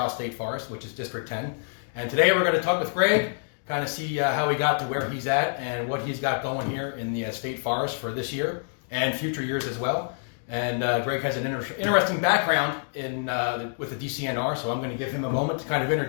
State Forest, which is District 10. And today we're going to talk with Greg, kind of see how he got to where he's at and what he's got going here in the State Forest for this year and future years as well. And Greg has an interesting background with the DCNR, so I'm going to give him a moment to kind of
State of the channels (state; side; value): silent; right; digital silence